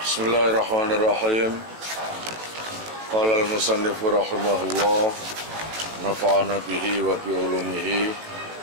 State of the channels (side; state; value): left; late; 18 ms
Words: Bismillahirrahmanirrahim. Qala al-musannifu rahimahullah, nafa'ana bihi wa bi ulumihi